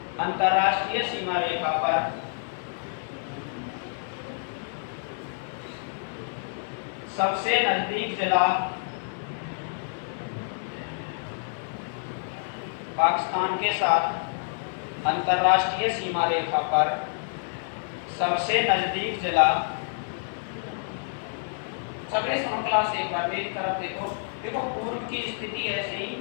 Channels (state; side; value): silent; right; digital silence